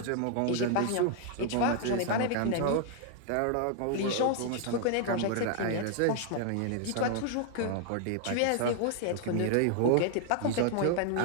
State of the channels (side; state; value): both; different; correlation 0.00